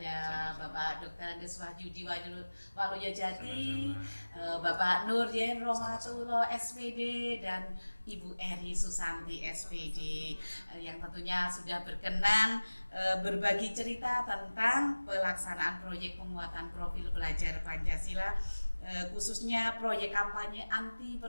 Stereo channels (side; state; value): both; inverted; correlation -1.00